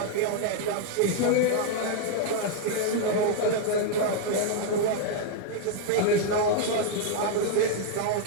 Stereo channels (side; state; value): both; different; correlation 0.00